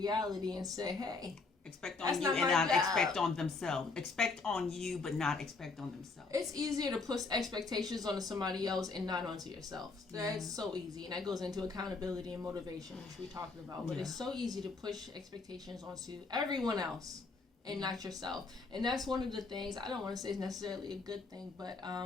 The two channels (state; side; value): quieter; right; 4.0 dB